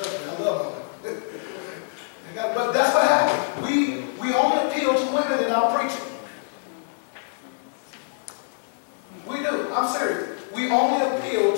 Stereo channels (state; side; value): silent; right; digital silence